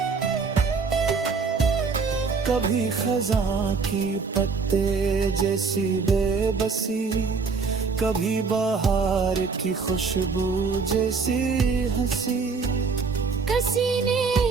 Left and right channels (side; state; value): left; quieter; 4.9 dB